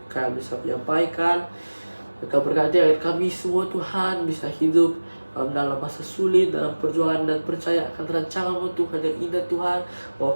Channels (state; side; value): inverted; both; correlation -1.00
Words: kami bisa menyampaikan. Kau berkati agar kami semua Tuhan bisa hidup dalam masa sulit, dalam perjuangan, dan percaya akan rancangan-Mu Tuhan yang indah Tuhan.